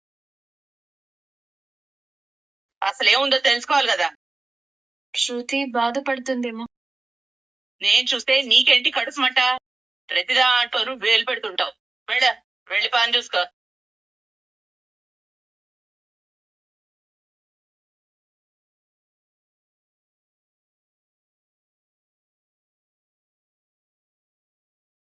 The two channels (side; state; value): left; quieter; 3.2 dB